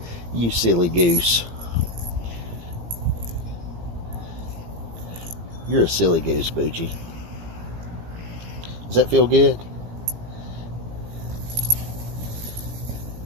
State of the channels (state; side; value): late; left; 17 ms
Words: You silly goose. You're a silly goose, Boogee. Does that feel good?